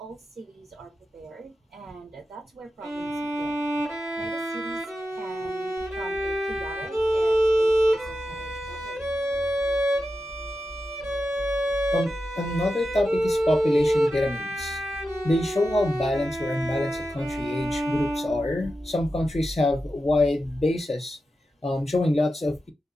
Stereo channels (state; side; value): normal; both; correlation 0.90